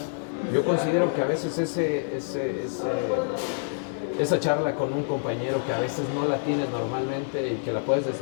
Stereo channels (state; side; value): silent; right; digital silence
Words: yo considero que a veces esa charla con un compañero que a veces no la tienes normalmente y que la puedes